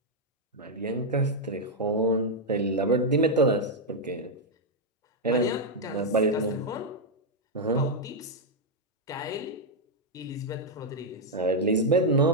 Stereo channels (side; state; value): both; normal; correlation -0.01